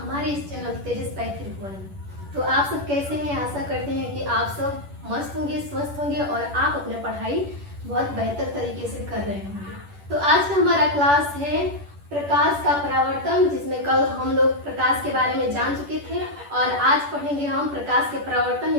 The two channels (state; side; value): late; left; 10 ms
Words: इस चैनल तेजस पैथ्रिक। तो आप सब कैसे हैं? आशा करते हैं कि आप सब मस्त होंगे, स्वस्थ होंगे और आप अपने पढ़ाई बहुत बेहतर तरीके से कर रहे होंगे। तो आज का हमारा क्लास है प्रकाश का परावर्तन, जिसमें कल हम लोग प्रकाश के बारे में जान चुके थे और आज पढ़ेंगे हम प्रकाश के परावर्तन